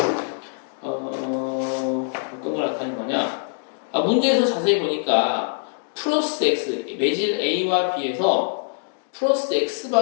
어떤 걸 나타낸 거냐? 문제에서 자세히 보니까 플러스 x 매질 A와 B에서 플러스 x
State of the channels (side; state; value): right; silent; 63 dB below the other